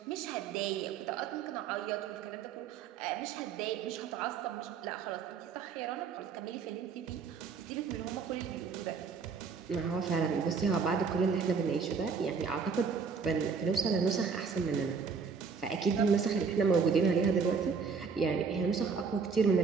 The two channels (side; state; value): left; quieter; 5.5 dB